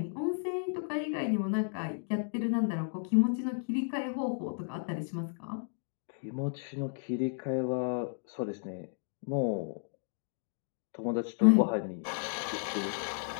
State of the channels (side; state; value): right; silent; digital silence